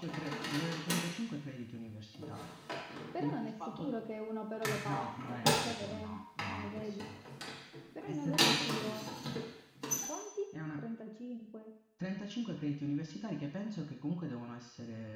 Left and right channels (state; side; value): identical; both; correlation 1.00